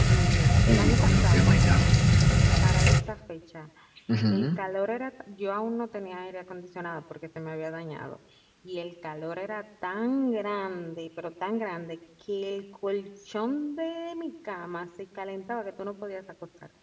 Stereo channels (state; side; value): identical; both; correlation 1.00